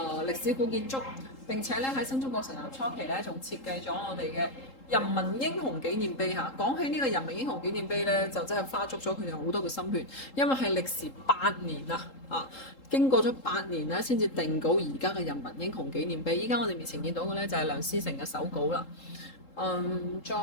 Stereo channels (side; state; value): right; late; 3.8 ms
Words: 歷史古建築。並且咧喺新中國成立初期咧，仲設計咗我哋嘅人民英雄紀念碑嚇。講起呢個人民英雄紀念碑咧，就真係花足咗佢哋好多嘅心血，因為係歷時8年經過咗8年咧，先至定稿而家嘅人民英雄紀念碑。依家我哋面前見到嘅咧就係梁思成嘅手稿啦。再